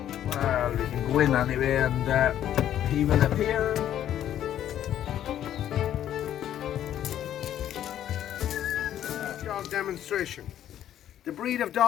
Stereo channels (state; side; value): quieter; right; 11.2 dB